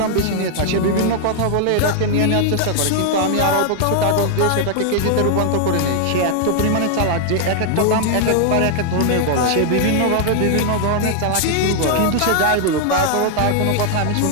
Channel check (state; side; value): different; both; correlation 0.00